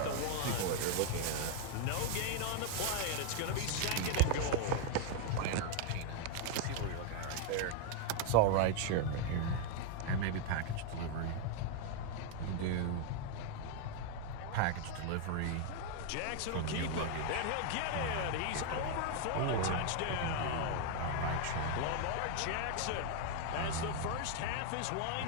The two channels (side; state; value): both; different; correlation 0.00